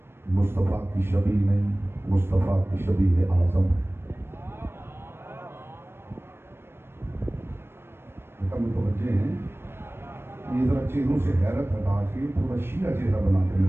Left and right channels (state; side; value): late; left; 0.12 ms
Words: मुस्तफ़ा की शबी नहीं, मुस्तफ़ा की शबी है आज़म है। मुतवज्जे हैं, ये जरा चेहरों से हैरत हटा के थोड़ा शिया चेहरा बना के